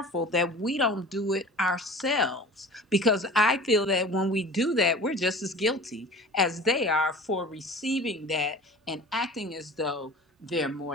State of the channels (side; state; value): both; normal; correlation 0.40